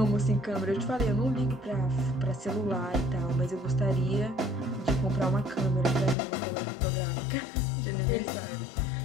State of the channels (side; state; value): right; drops out; at 6.2 s